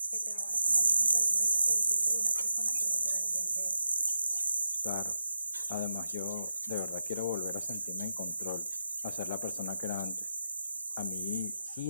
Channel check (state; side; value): inverted; both; correlation -0.88